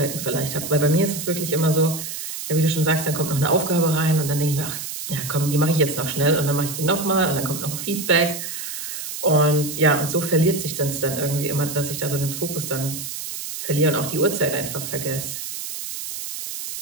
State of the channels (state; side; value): noise; right; hiss, 7 dB below the sound